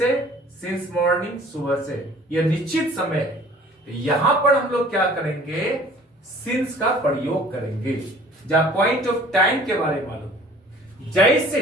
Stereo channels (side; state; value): both; normal; correlation 0.51